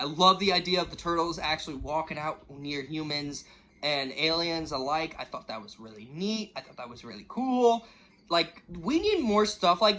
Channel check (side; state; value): both; identical; correlation 1.00